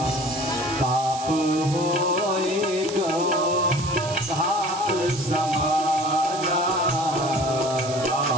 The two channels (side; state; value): right; noise; hiss, 11 dB below the sound